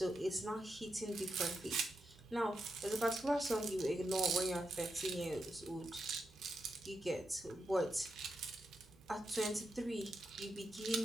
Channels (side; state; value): both; normal; correlation 0.85